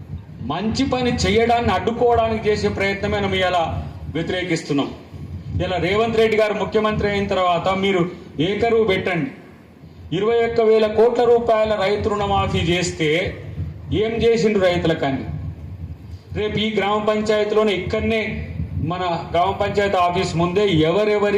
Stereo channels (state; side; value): identical; both; correlation 1.00